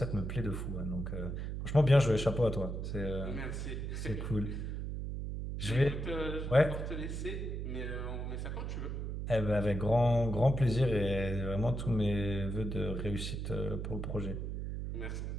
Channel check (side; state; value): right; noise; hum, 4 dB below the sound